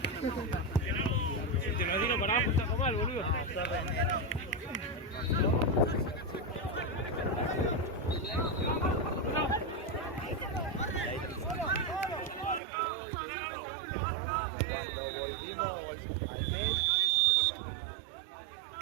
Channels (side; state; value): left; drops out; at 12.6 s